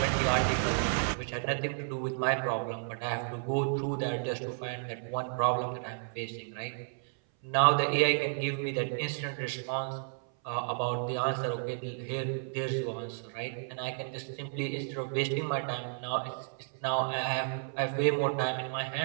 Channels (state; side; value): silent; left; 56 dB below the other